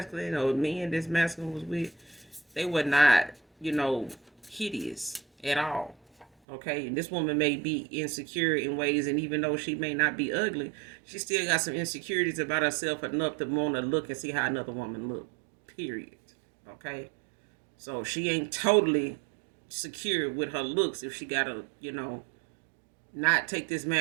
or men this masculine was with, they were not, hideous at all. Okay, and this woman may be insecure in ways, and even though she may not be ugly, she still got some insecurities about herself enough to want to look and see how another woman look. Period. Okay, so she ain't totally secure with her looks if she gotta, not take this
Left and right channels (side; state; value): left; drops out; at 6.2 s